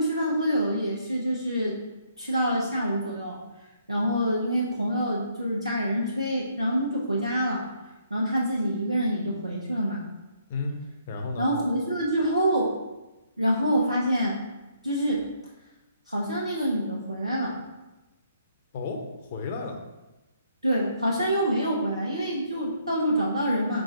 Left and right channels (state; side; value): inverted; both; correlation -0.70